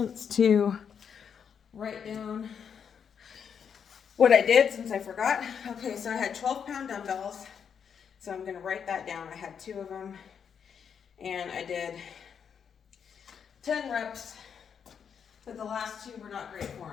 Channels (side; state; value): right; quieter; 7.3 dB